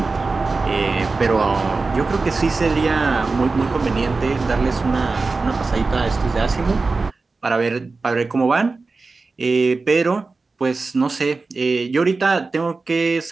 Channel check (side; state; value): left; quieter; 3.9 dB